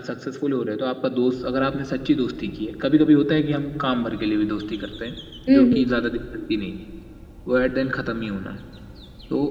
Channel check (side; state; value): both; identical; correlation 1.00